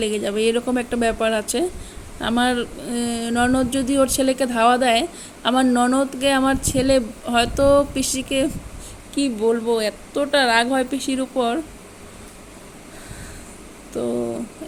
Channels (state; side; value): identical; both; correlation 1.00